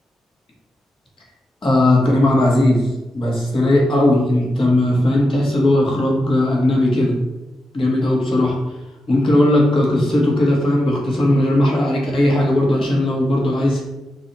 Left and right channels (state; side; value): normal; both; correlation 0.88